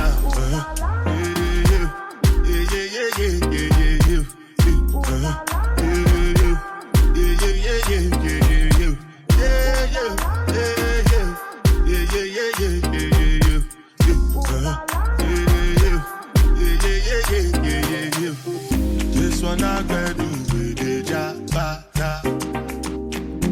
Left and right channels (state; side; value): identical; both; correlation 1.00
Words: This one I got do with the jabata.